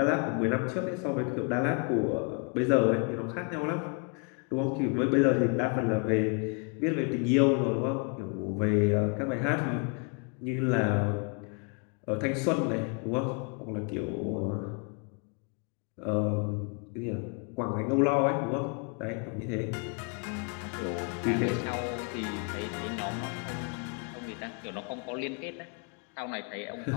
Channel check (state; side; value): quieter; right; 36.4 dB